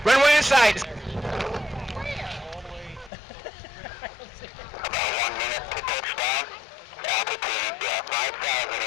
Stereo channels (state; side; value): drops out; right; at 3.1 s